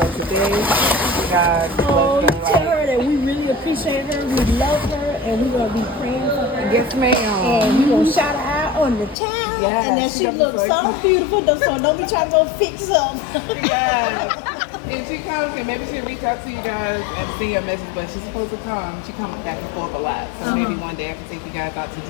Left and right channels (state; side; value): drops out; right; at 9.2 s